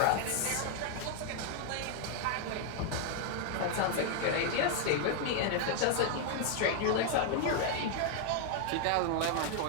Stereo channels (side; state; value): both; different; correlation 0.00